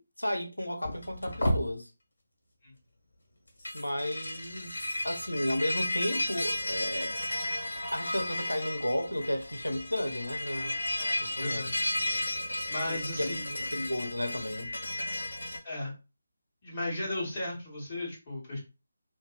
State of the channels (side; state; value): both; inverted; correlation -0.94